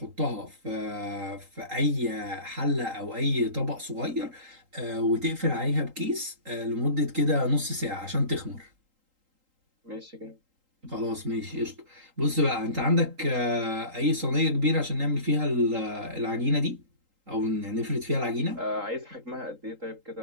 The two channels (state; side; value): late; left; 3.8 ms